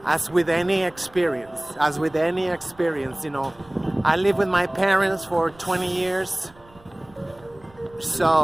As with any experience, you know, I lived with my parents for 20 years.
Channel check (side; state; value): right; noise; rumble, 27 dB below the sound